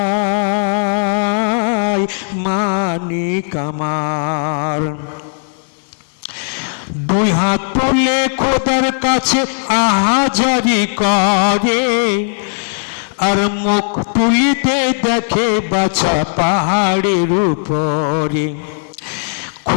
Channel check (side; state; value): right; silent; digital silence